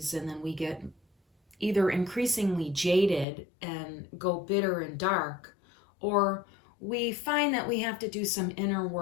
and then we get either increasingly jaded and go bitter and dark, or we find that we have to do some inner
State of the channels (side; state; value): right; drops out; at 3.2 s